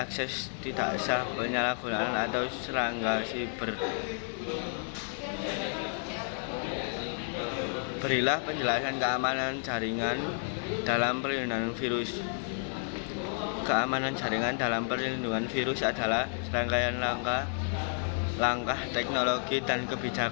tidak sah, penyalahgunaan, atau serangga siber. Berilah penjelasan keamanan jaringan dalam perlindungan virus. Keamanan jaringan dalam perlindungan virus adalah serangkaian langkah teknologi dan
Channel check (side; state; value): right; silent; 57 dB below the other